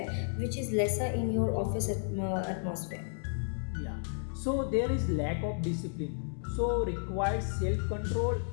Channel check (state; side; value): silent; right; digital silence